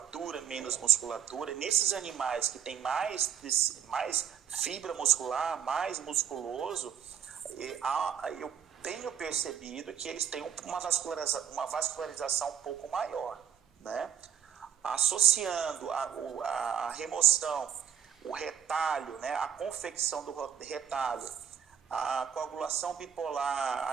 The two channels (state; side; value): quieter; left; 8.7 dB